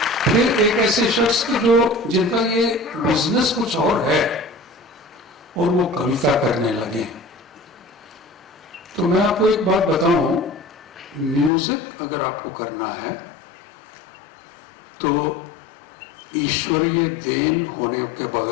फिर एक ऐसे शख्स के जो जिनका ये बिजनेस कुछ और है और वो कविता करने लगे। तो मैं आपको एक बात बताऊं, म्यूजिक अगर आपको करना है तो ईश्वरीय देन होने के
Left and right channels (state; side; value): drops out; right; at 11.5 s